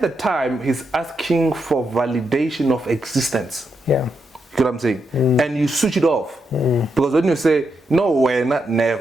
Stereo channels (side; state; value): both; normal; correlation 0.83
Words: the time, he's asking for validation of existence. Yeah. You know what I'm saying? And you switch it off. Because when you say, no, when?